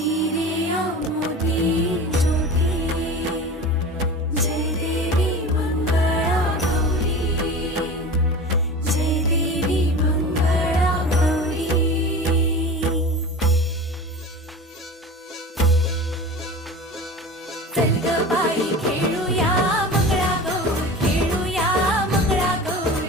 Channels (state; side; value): normal; both; correlation 0.34